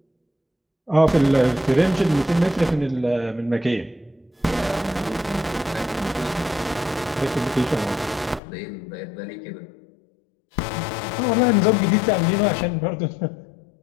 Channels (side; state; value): right; drops out; at 8.4 s